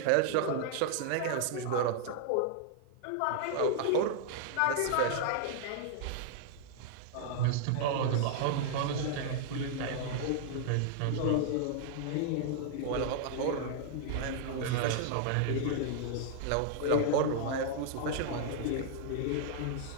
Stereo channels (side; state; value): both; different; correlation -0.01